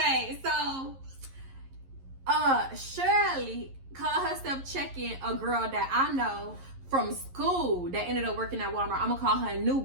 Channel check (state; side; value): late; left; 11 ms